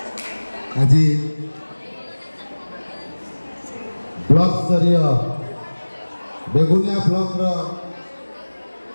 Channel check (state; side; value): inverted; both; correlation -1.00